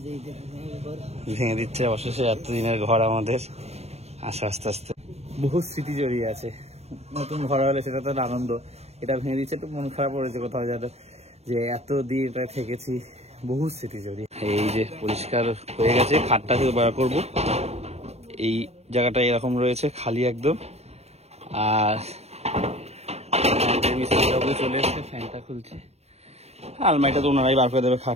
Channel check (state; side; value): late; left; 0.31 ms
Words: ভেঙে দিচ্ছে অবশেষে এতদিনের ঘর আমাদের। আসে আস্তে আস্তে, বহু স্মৃতি জড়িয়ে আছে। নতুন ঘর হলে সেটা তো আনন্দ, এটা ভেঙে দিচ্ছে একটু মন খারাপ করেছে কোথাও যেন, যে এতদিন এটা থেকেছি, বহু স্মৃতি জড়িয়ে। এই যে পরিষ্কার হয়ে গেছে, খাটটা থেকে বার করবো। এই জায়গাটা এরকম রয়েছে খালি একদম। আর মিস্ত্রিবাবু চলে এসছে, ফ্যানটা খুলছে, আলমারিটা তো ওনারাই বার করে দেবে,